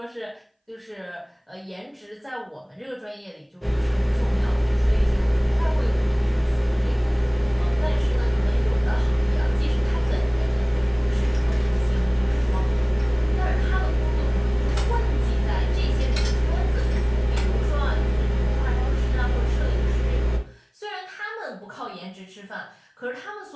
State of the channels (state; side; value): identical; both; correlation 1.00